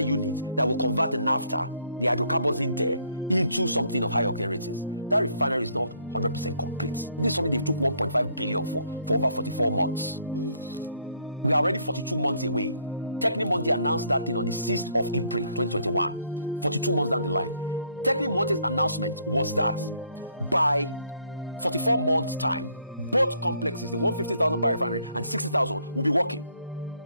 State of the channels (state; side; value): inverted; both; correlation -0.67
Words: that will convert the naphtha, the hydrocarbons in there, into something of high octane ratings. That refinery is not 100% complete. This is something they took 1.5 billion for over 44 months. We are already 42 months away. Techni Monte announced that thing on the 6th of April 2021, 42 months down the line. Techni Monte's announcement was that by 44 months' time, both complexes, the 150,000 barrel refinery and 60,000, will be working.